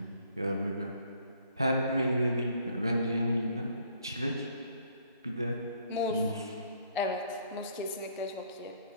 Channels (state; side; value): inverted; both; correlation -0.63